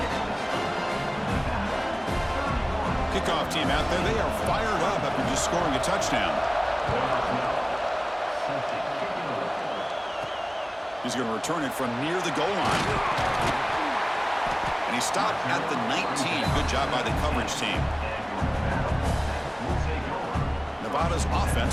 Kickoff team out there. They are fired up after just scoring a touchdown. He's going to return it from near the goal line. And he stopped at the 19. Good job by the coverage team. Nevada's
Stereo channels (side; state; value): both; identical; correlation 1.00